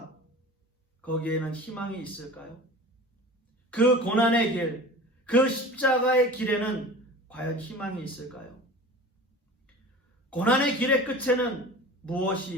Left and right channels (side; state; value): both; normal; correlation 0.37